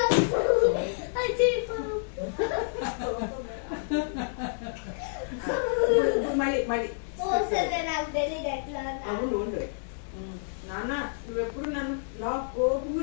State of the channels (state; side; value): silent; right; digital silence